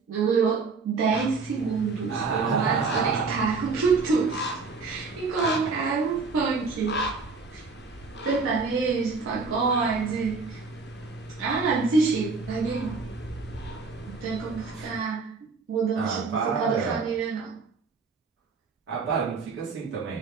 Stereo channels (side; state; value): left; quieter; 4.5 dB